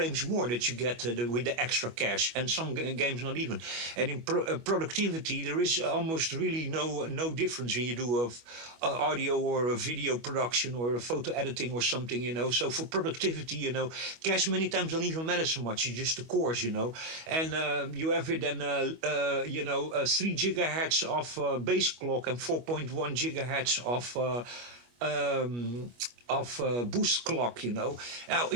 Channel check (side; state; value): left; late; 25 ms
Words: more that you get with the extra cache, and some games not even. And in productivity, there is almost really no difference when you do audio or a video production or a photo editing or something, So for productivity, cache many times don't even matter so much. It's just the cores, And you have it then, 3 gigahertz of base clock and 4.1 gigahertz of boost clock, Now,